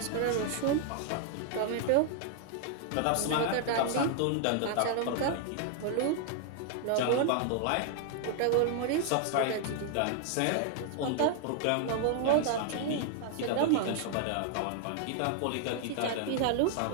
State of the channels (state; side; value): different; both; correlation 0.00